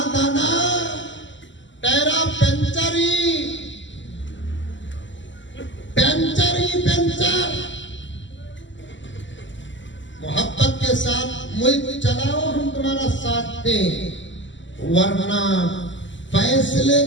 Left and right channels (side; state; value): right; late; 0.54 ms